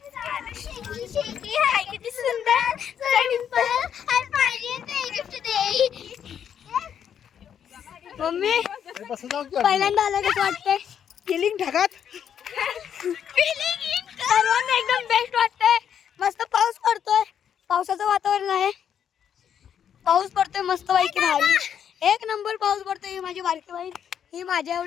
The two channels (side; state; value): right; quieter; 8.7 dB